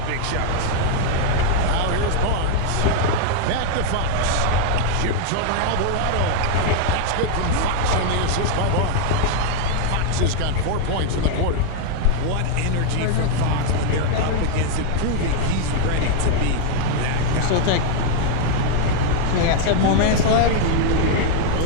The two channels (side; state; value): both; different; correlation 0.00